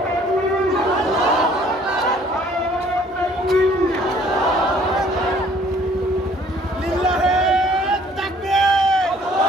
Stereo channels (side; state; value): both; normal; correlation 0.58